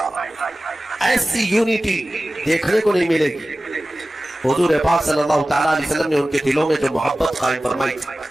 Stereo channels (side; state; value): both; normal; correlation 0.96